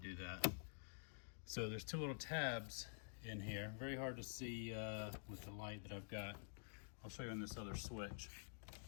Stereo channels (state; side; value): silent; right; digital silence